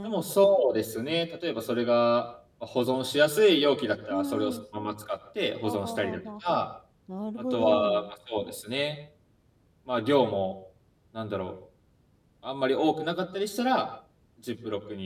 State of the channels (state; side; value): identical; both; correlation 1.00